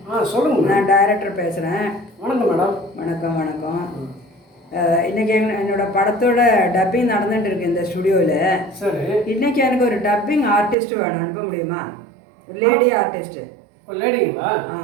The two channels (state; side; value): drops out; left; at 10.8 s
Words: சொல்லுங்க. நான் டைரக்டர் பேசுகிறேன். வணக்கம் மேடம். வணக்கம் வணக்கம். இன்றைக்கி என்னோடய படத்தோட டப்பிங் நடந்துகிட்டு இருக்கு இந்த ஸ்டுடியோவில். சரி. இன்றைக்கி எனக்கு ஒரு டப்பிங் ஆர்டிஸ்ட் வேணும், அனுப்ப முடியுமா? ஒரு லேடி ஆர்டிஸ்ட்டு. ஒரு லேடிங்களா?